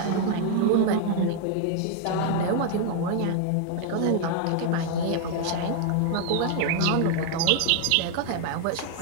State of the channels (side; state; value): both; different; correlation 0.00